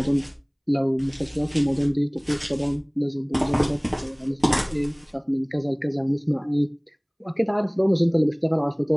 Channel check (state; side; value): identical; both; correlation 1.00